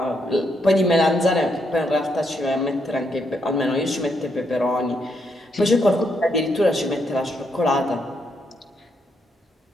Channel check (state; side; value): normal; both; correlation 0.77